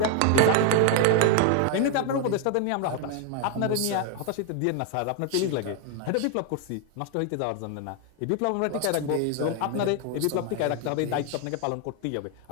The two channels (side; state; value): both; different; correlation 0.00